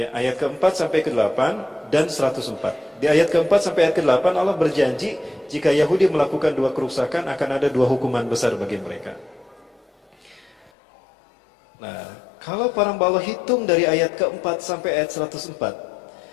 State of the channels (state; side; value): drops out; right; at 10.7 s